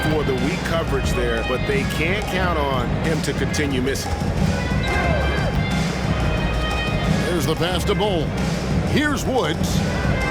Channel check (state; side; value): identical; both; correlation 1.00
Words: for the weak coverage there, but they can't count on him to continue missing. There's the pass to Bull. Here's Woods.